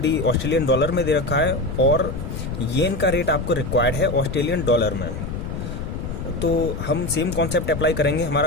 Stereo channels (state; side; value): noise; left; rumble, 6 dB below the sound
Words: ऑस्ट्रेलियन डॉलर में दे रखा है और येन का रेट आपको रिक्वायर्ड है ऑस्ट्रेलियन डॉलर में। तो हम सेम कॉन्सेप्ट अप्लाई करेंगे।